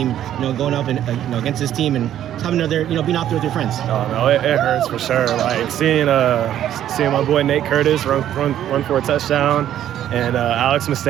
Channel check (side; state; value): left; quieter; 11.3 dB